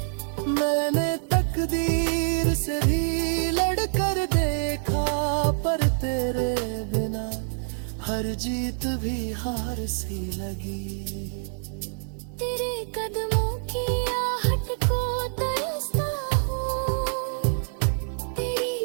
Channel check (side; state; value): left; silent; 61 dB below the other